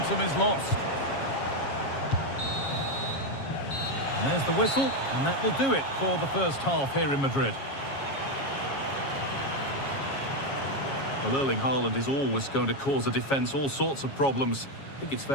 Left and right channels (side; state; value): right; late; 7.3 ms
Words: is lost. And there's the whistle, and that will do it for the first half here in Madrid. Well, Erling Haaland is always going to cause a defence all sorts of problems. I think it's